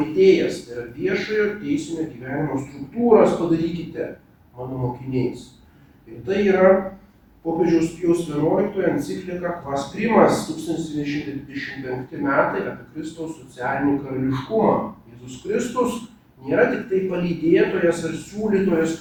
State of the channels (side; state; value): both; identical; correlation 1.00